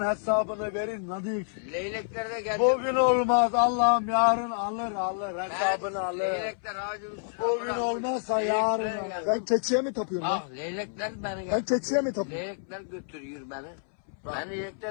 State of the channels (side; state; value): right; silent; 59 dB below the other